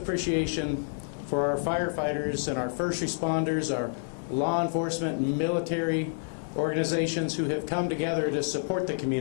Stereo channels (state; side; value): silent; right; digital silence